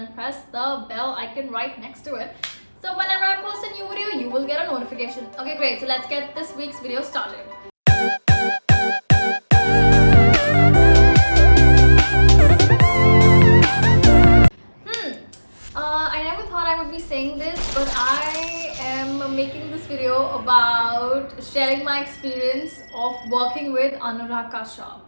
press the bell icon right next to it. So whenever I post a new video, you will get a notification. Okay, great. So let's get this week's video started. I never thought I would be saying this, but I am making this video about sharing my experience of working with Anurag Kashyap.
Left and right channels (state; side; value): inverted; both; correlation -1.00